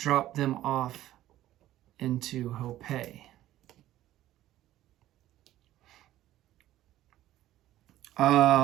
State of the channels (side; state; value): left; quieter; 14.1 dB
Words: them off into Hopei.